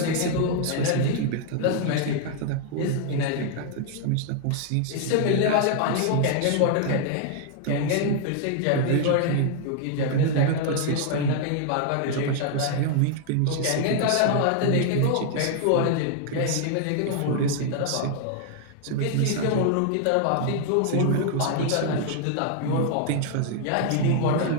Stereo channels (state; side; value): different; both; correlation 0.00